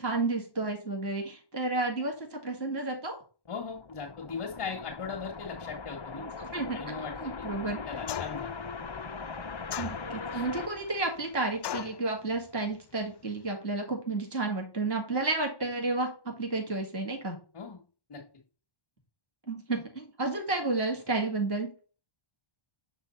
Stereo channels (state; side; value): late; right; 1.1 ms